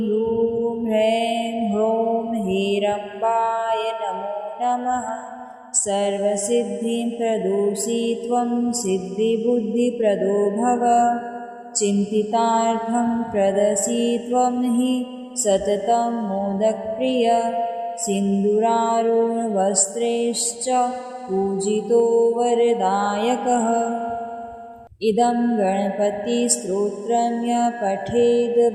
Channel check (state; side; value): identical; both; correlation 1.00